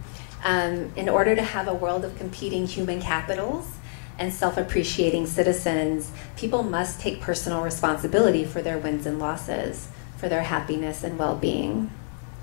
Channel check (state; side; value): silent; right; digital silence